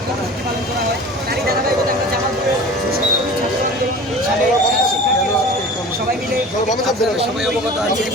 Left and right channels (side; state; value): both; normal; correlation 0.39